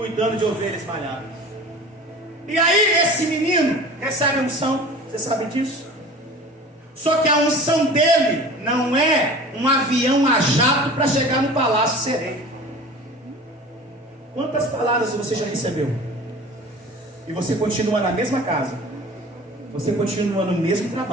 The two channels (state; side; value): normal; both; correlation 0.40